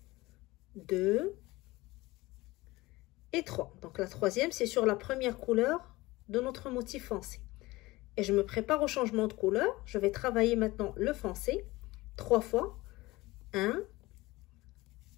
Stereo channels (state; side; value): quieter; right; 20.3 dB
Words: 2 et 3. Donc la troisième, c'est sur la première couleur de notre motif foncé. Et je me prépare au changement de couleur. Je vais travailler maintenant le foncé 3 fois. 1,